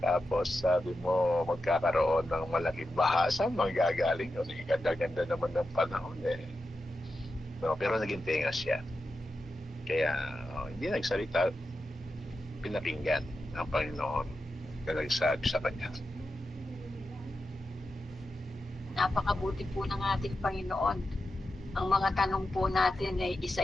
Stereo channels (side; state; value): both; normal; correlation 0.89